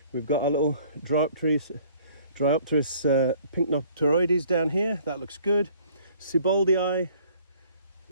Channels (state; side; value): inverted; both; correlation -0.56